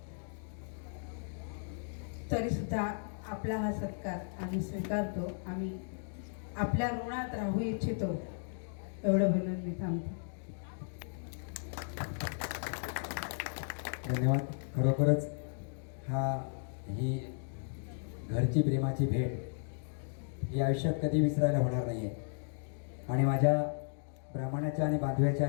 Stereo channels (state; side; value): silent; right; digital silence